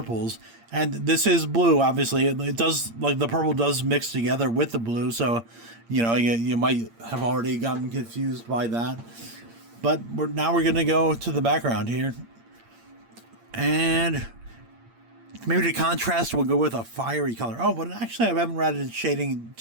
and this is blue. Obviously, it does, like, the purple does mix together with the blue, so you might have already gotten confused by that. But now we're gonna go to the background here. And maybe the contrast will go with a fiery color. Oh, but actually I haven't added shading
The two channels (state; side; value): late; left; 8.7 ms